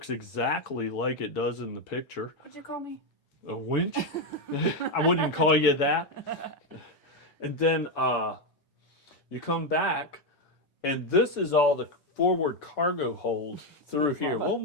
exactly like it does in the picture. What'd you call me? A winch? I wouldn't call you that. And then you come back, and this is all the forward cargo hold through here. We'll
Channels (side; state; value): right; late; 6.9 ms